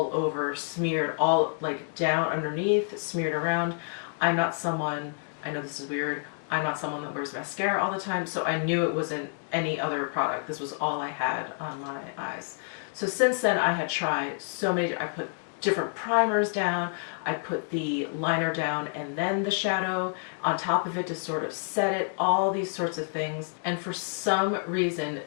over, smeared, all like down underneath, smeared around. I'm not someone, I know this is weird, I'm not someone that wears mascara all the time, so I knew it wasn't any other product. This was all I had on my eyes. So since then, I had tried so many, I put different primers down, I put the liner down and then the shadow on top of it to sort of set it, all these sorts of things. And for some reason,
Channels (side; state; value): right; silent; 59 dB below the other